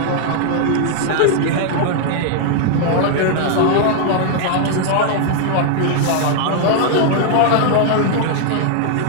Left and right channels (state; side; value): different; both; correlation 0.00